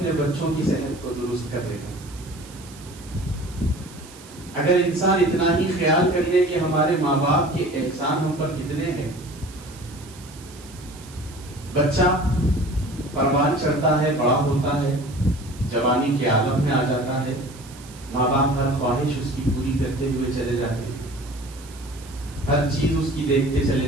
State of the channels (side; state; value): right; noise; hiss, 20 dB below the sound